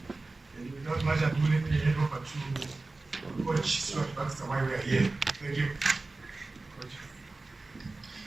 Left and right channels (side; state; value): left; quieter; 3.3 dB